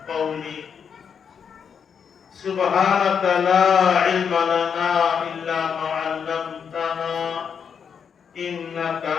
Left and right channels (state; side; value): quieter; right; 7.0 dB